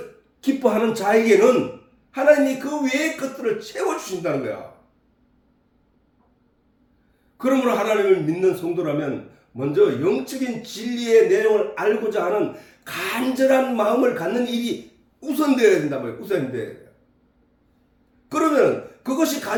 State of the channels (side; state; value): both; identical; correlation 1.00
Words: 기뻐하는 자에게는 하나님이 그 외의 것들을 채워주신다는 거야. 그러므로 하나님을 믿는 성도라면 먼저 영적인 진리의 내용을 알고자 하는 간절한 마음을 갖는 일이 우선되어야 된단 말이에요. 우선되어야 돼요. 그러면 그것이